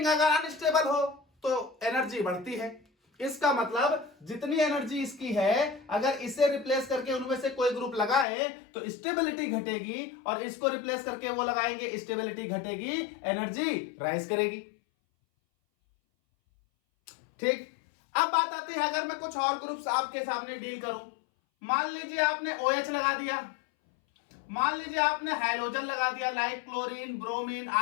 अगर अनस्टेबल हो तो एनर्जी बढ़ती है. इसका मतलब जितनी एनर्जी इसकी है, अगर इसे रिप्लेस करके उनमें से कोई ग्रुप लगाए तो स्टेबिलिटी घटेगी, और इसको रिप्लेस करके वो लगाएंगे, स्टेबिलिटी घटेगी, एनर्जी राइज करेगी. ठीक. अब बात आती है अगर मैं कुछ और ग्रुप्स आपके सामने डील करूं. मान लीजिए आपने OH लगा दिया, मान लीजिए आपने हाइड्रोजन लगा दिया लाइक क्लोरीन, ब्रोमीन,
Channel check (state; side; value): drops out; right; at 8.2 s